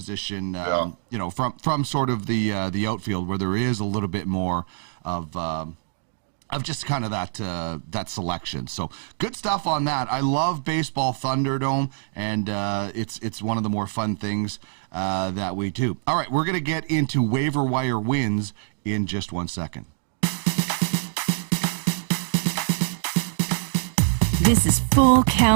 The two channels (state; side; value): silent; left; 62 dB below the other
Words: from sort of the outfield where there is a little bit more of just kind of that selection. So good stuff on that. I love Baseball Thunderdome, and it's one of the more fun things that we do. All right, we're going to get into waiver wire wins in just 1 second. This is Full